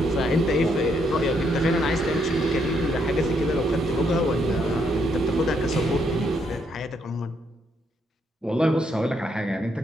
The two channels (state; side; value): normal; both; correlation 0.75